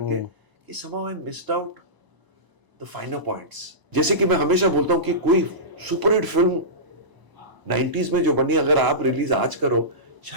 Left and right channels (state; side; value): late; left; 1.0 ms